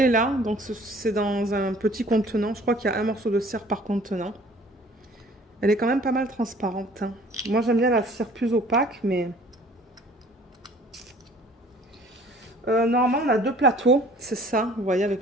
là, donc c'est dans un petit contenant. Je crois qu'il y a un morceau de cire par contenant. Elle est quand même pas mal transparente. Hein. Moi, j'aime bien la cire plus opaque, mais... normalement, on a 2 plateaux, c'est ça, vous voyez, avec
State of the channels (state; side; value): normal; both; correlation 0.52